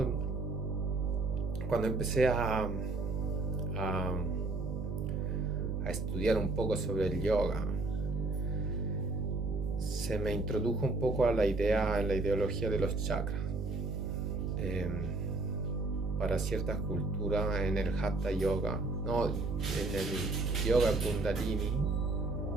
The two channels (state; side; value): noise; right; hum, 2 dB below the sound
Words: Cuando empecé a estudiar un poco sobre el yoga, se me introdujo un poco a la ideología de los chakras. Para ciertas culturas, en el Hatha Yoga, no, en el Yoga Kundalini,